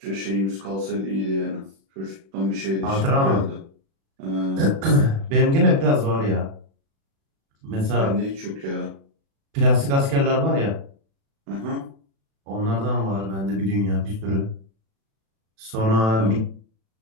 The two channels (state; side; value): late; left; 36 ms